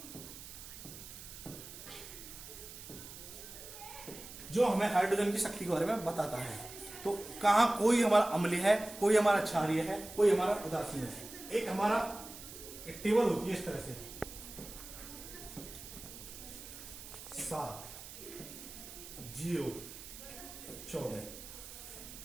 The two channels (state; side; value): noise; right; hiss, 13 dB below the sound